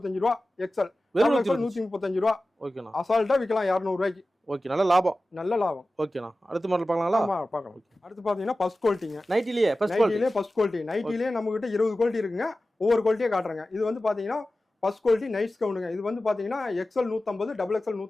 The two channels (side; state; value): both; normal; correlation 0.95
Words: ரூபா எக்ஸல். வெறும் 135 ரூபா. ஓகேண்ணா. அசால்ட்டா விக்கலாம் 200 ரூபாய்க்கு. ஓகே நல்ல லாபம். நல்ல லாபம். ஓகேண்ணா. அடுத்த மாடல் பார்க்கலாங்களா? ஆமா பார்க்கலாம். அடுத்து பாத்தீங்கன்னா ஃபர்ஸ்ட் குவாலிட்டிங்க. நைட்டிலேயே ஃபர்ஸ்ட் குவாலிட்டி. நைட்டிலே ஃபர்ஸ்ட் குவாலிட்டி. நைட்டிலே நம்ம கிட்ட 20 குவாலிட்டி இருக்குங்க. ஒவ்வொரு குவாலிட்டியே காட்டுறேங்க. இது வந்து பாத்தீங்கன்னா ஃபர்ஸ்ட் குவாலிட்டி நைட்ஸ் கவுண்டுங்க. இது வந்து பாத்தீங்கன்னா எக்ஸல் 150, டபுள் எக்ஸல்